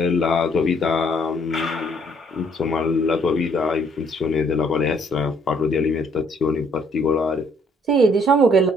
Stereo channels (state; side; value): normal; both; correlation 0.65